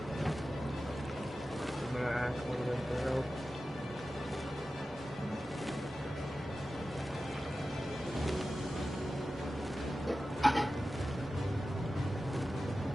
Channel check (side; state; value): both; normal; correlation 0.94